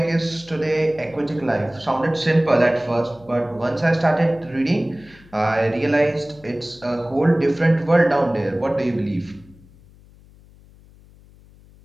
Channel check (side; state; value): left; noise; hum, 25 dB below the sound